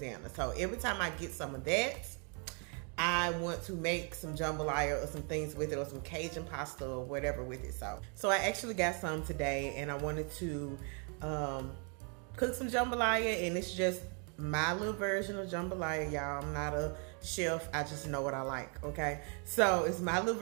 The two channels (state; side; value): quieter; left; 38.3 dB